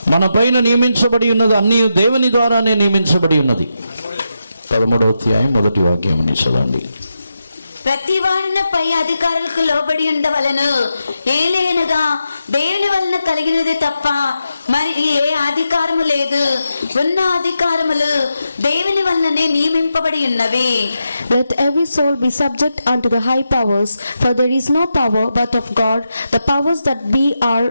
మన పైన నియమించబడి ఉన్నది, అన్నీ దేవుని ద్వారానే నియమించబడి ఉన్నది. 13వ అధ్యాయం 1వ వాక్యం చదవండి. ప్రతి వాడిన పై అధికారులకు లోబడి ఉండవలను, ఏలైనగా దేవుని వలన కలిగినది తప్ప మరి ఏ అధికారము లేదు. ఉన్న అధికారములు దేవుని వలననే నియమింపబడి ఉన్నవి. Let every soul be subject unto the high powers, for there is no power but of God. The powers that be are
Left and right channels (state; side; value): inverted; both; correlation -0.86